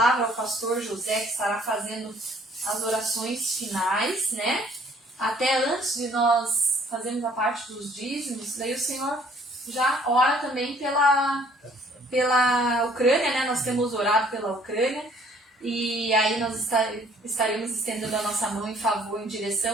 ao pastor José, que estará fazendo as orações finais, né? Até antes de nós fazermos a parte dos dízimos, daí o Senhor já ora também pela Ucrânia, né? Nós temos orado pela Ucrânia e aí nós estaremos estendendo a nossa mão em favor, em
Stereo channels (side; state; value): both; normal; correlation 0.59